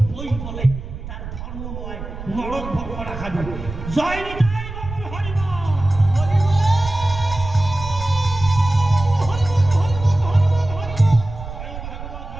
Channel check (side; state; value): right; noise; rumble, 10 dB below the sound